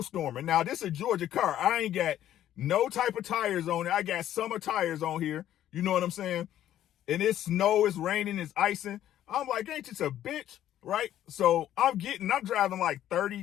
Now this is a Georgia car. I ain't got no type of tires on it. I got summer tires on here. You know what I'm saying? And it's snow, it's raining, it's icing. I'm like, ain't this a bitch, right? So I'm driving like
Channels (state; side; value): quieter; right; 11.9 dB